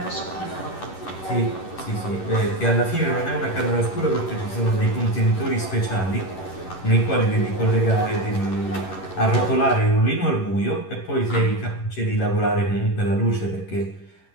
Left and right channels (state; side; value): late; right; 11 ms